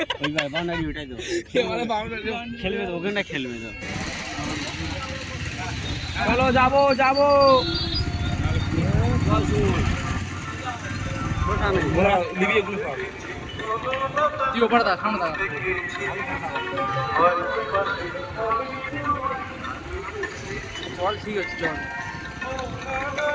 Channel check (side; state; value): both; identical; correlation 1.00